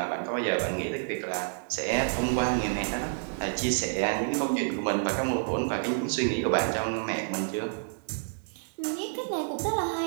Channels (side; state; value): left; silent; digital silence